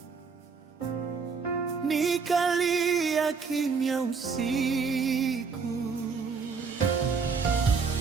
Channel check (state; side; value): quieter; left; 5.3 dB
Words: nikalia kimya usiku.